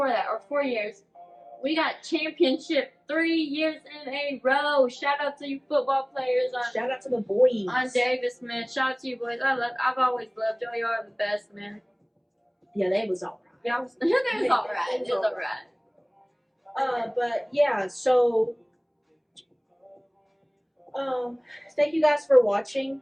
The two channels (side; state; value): both; identical; correlation 1.00